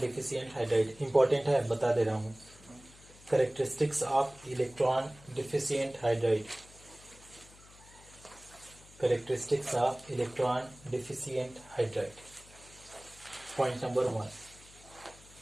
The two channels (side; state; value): left; noise; hum, 23 dB below the sound